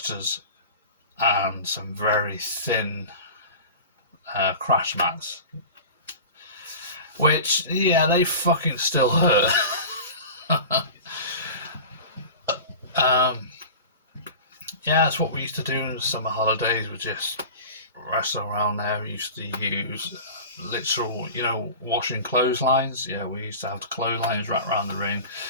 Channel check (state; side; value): inverted; both; correlation -0.35